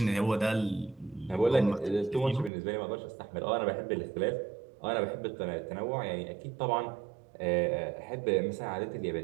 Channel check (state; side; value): drops out; left; at 2.5 s